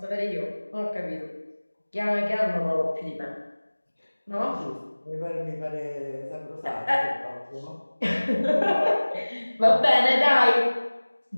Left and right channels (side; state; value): both; inverted; correlation -1.00